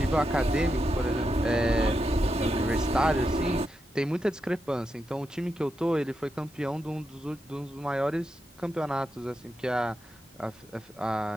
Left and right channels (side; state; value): both; normal; correlation 0.86